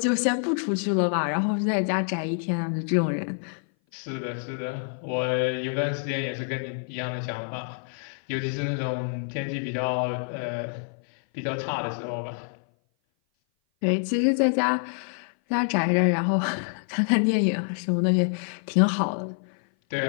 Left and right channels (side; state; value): right; silent; 57 dB below the other